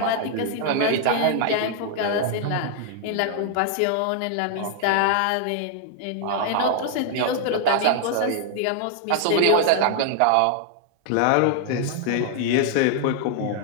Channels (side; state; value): both; different; correlation 0.00